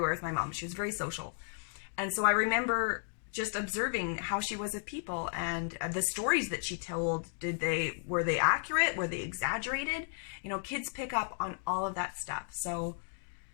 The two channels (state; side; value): silent; right; digital silence